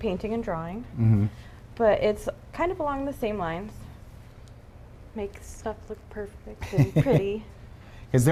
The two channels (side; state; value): both; identical; correlation 1.00